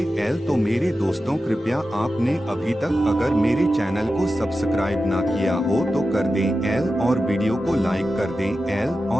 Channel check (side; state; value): both; normal; correlation 0.92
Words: तो मेरे दोस्तों, कृपया आपने अभी तक अगर मेरे चैनल को सब्सक्राइब ना किया हो तो कर दें और वीडियो को लाइक कर दें